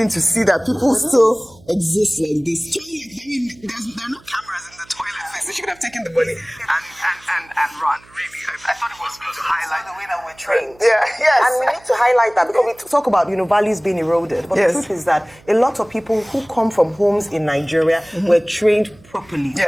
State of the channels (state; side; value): noise; right; hum, 27 dB below the sound